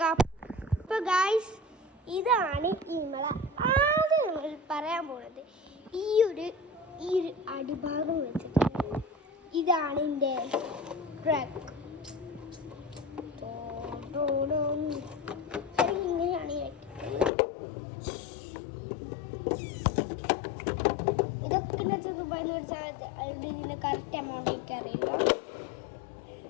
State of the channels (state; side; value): drops out; right; at 17.3 s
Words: അപ്പോൾ ഗായ്സ്, ഇതാണ് നമ്മളെ ആദ്യം നമ്മൾ പറയാൻ പോകുന്നത്. ഈ ഒരു അടിഭാഗം വെച്ചിട്ട് ഇതാണ് എൻ്റെ ട്രക്ക്. ഇങ്ങനെയാണ് ഈ ഇതൊക്കെ ദുബായിന്ന് വെച്ചാൽ ഇതിൻ്റെ കറക്റ്റ് എമൗണ്ട് എനിക്കറിയില്ല.